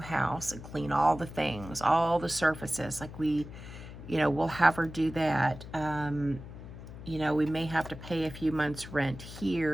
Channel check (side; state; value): left; noise; hum, 13 dB below the sound